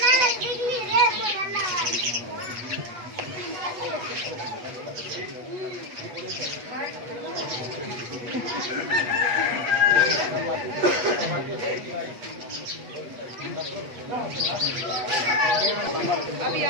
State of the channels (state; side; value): late; left; 8.2 ms